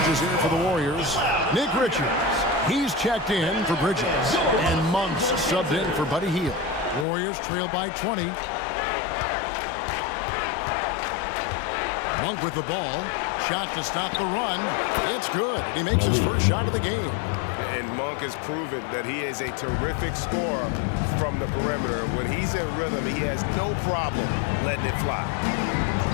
here for the Warriors. Nick Richards, he's checked in for Bridges. And Monk's subbed in for Buddy Hield. Warriors trail by 20. Monk with the ball. Shot to stop the run. It's good. He makes his first shot of the game. And Monk has proven that he is a terrific scorer from the perimeter. When he's in rhythm, he has no problem letting it fly.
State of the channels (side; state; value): right; drops out; at 7.1 s